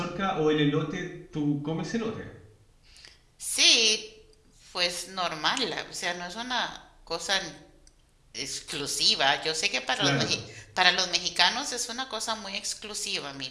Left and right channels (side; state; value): both; identical; correlation 1.00